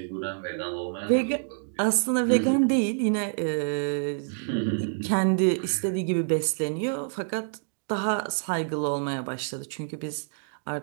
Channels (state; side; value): silent; left; digital silence